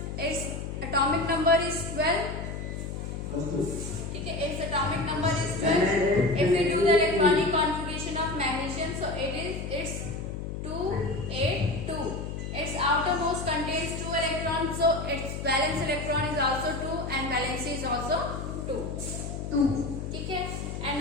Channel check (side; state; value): left; noise; hum, 6 dB below the sound